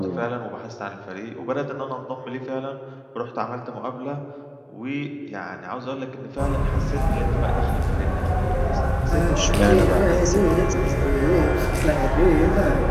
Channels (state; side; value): identical; both; correlation 1.00